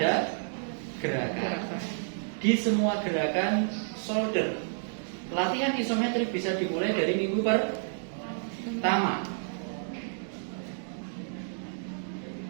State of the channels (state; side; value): silent; left; 58 dB below the other